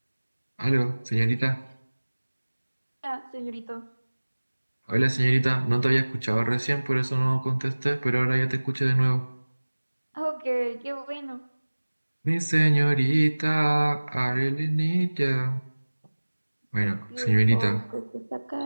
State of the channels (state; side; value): inverted; both; correlation -1.00